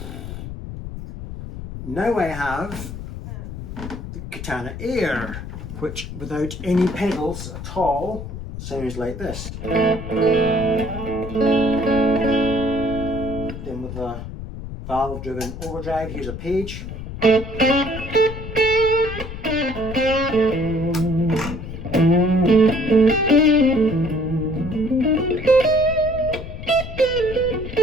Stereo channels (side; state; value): left; noise; rumble, 9 dB below the sound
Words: Now I have the Katana Air, which without any pedals at all sounds like this. Then with the valve-driven overdrive, here's a page.